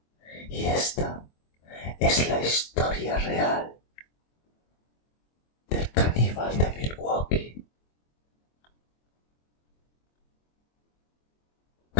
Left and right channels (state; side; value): late; right; 24 ms